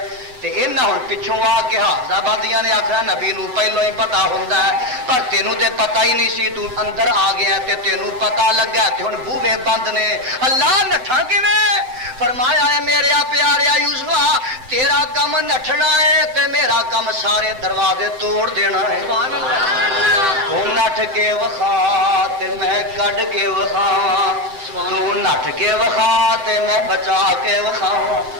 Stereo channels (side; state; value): left; late; 7.8 ms